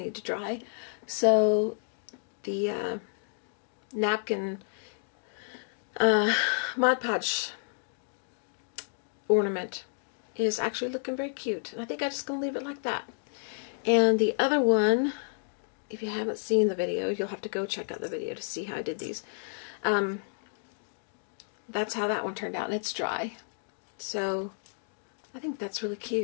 to dry. So the napkin Mod Podge ornament is actually looking very cute. And I think I'm just going to leave it like that. And the other one, if you haven't seen the video, you'll have to go check out the video to see how I did these. That's how that one turned out, and it's dry. So I think that's really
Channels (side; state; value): right; silent; digital silence